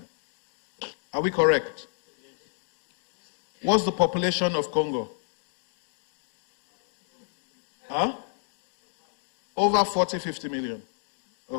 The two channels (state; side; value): silent; right; digital silence